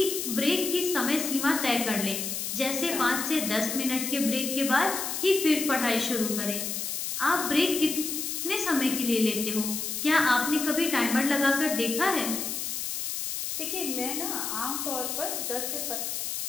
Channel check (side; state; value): left; noise; hiss, 3 dB below the sound